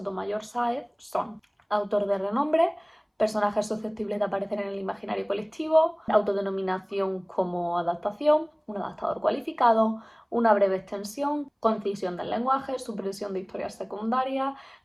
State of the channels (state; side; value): identical; both; correlation 1.00